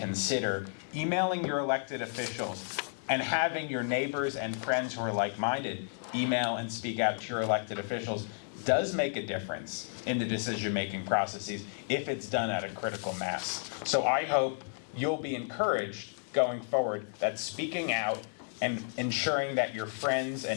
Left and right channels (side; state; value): right; silent; 56 dB below the other